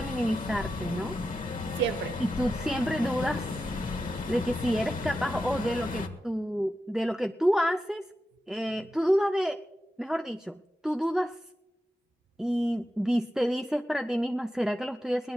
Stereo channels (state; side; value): normal; both; correlation 0.90